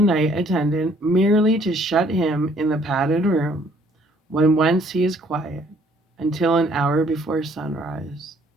attendant merely to shut him in the padded room, when once he is quiet, until an hour before sunrise.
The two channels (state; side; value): normal; both; correlation 0.62